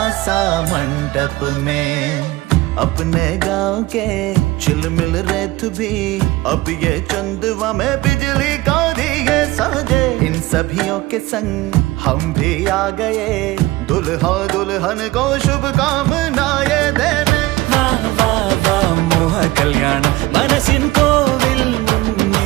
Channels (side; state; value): left; quieter; 18.9 dB